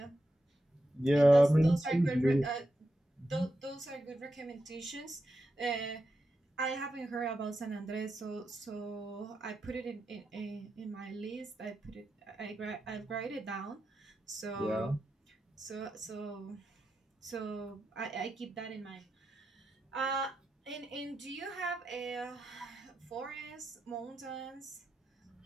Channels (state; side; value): normal; both; correlation 0.88